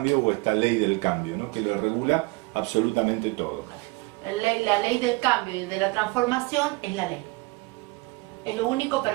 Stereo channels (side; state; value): left; quieter; 24.9 dB